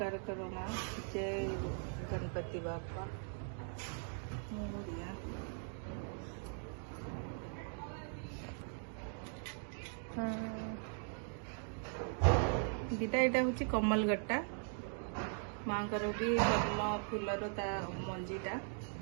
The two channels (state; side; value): silent; left; 51 dB below the other